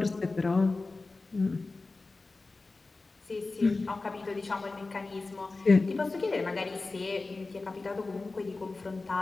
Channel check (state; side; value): quieter; right; 3.5 dB